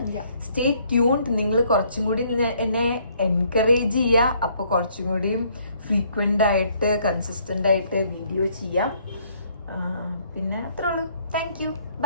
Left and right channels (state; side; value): inverted; both; correlation -0.65